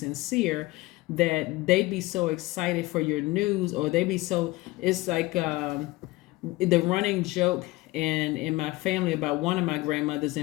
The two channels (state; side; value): quieter; right; 20.1 dB